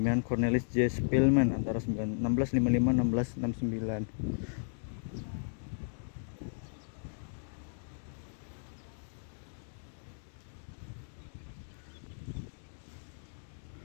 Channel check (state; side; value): silent; right; digital silence